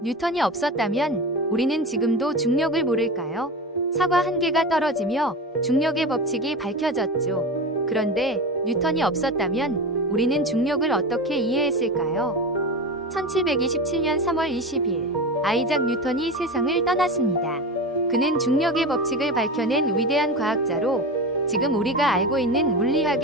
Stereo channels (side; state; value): both; normal; correlation 0.25